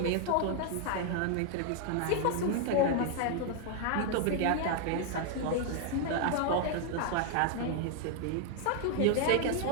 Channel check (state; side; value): different; both; correlation 0.00